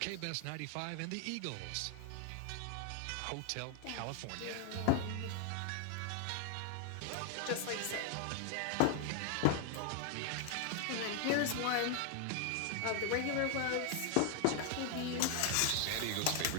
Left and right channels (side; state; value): both; different; correlation 0.00